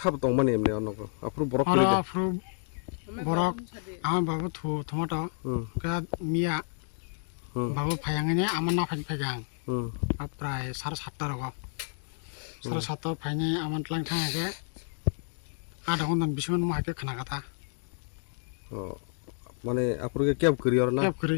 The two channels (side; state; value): right; silent; 58 dB below the other